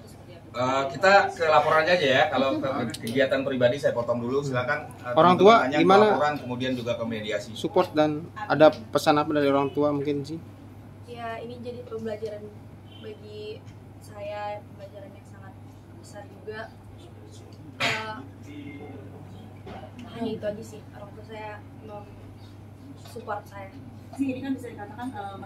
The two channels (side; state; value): both; identical; correlation 1.00